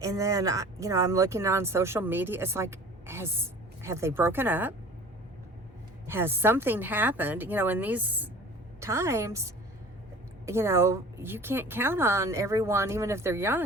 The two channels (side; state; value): both; normal; correlation 0.44